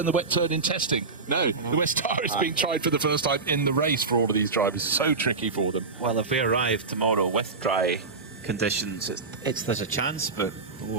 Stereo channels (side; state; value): left; quieter; 4.2 dB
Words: the wet turn in testing? No, the wet tire is being tried for the first time in the race for all of these drivers. It's so tricky for them. Well, if they arrive tomorrow with dry conditions, there's a chance, but